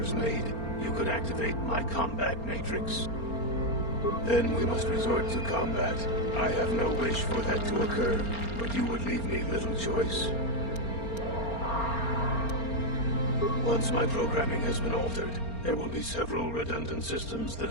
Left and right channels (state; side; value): late; right; 4.3 ms